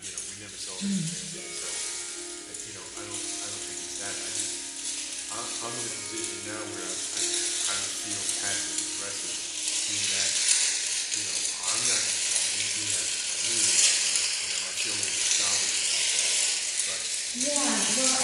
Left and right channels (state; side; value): identical; both; correlation 1.00